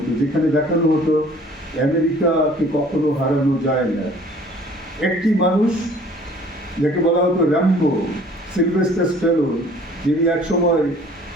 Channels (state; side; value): normal; both; correlation 0.53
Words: যেখানে দেখানো হতো আমেরিকাকে কখনো হারানো যায় না। একটি মানুষ যাকে বলা হতো র্যাম্বো, সিলভেস্টার স্ট্যালোন, যিনি এক সময়